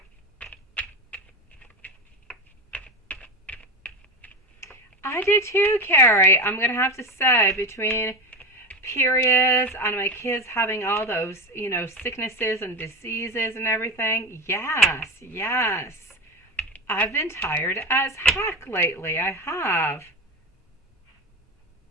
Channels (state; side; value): normal; both; correlation 0.21